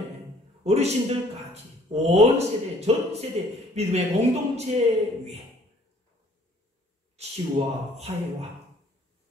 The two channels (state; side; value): normal; both; correlation 0.59